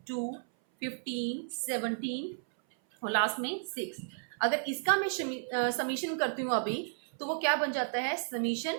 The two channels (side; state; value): left; silent; 56 dB below the other